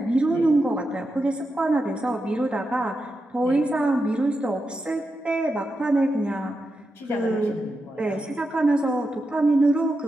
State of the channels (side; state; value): both; normal; correlation 0.88